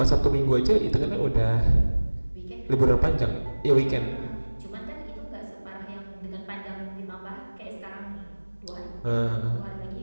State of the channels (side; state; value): both; inverted; correlation -1.00